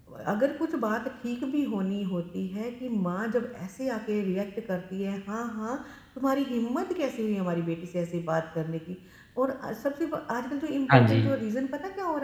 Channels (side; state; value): both; identical; correlation 1.00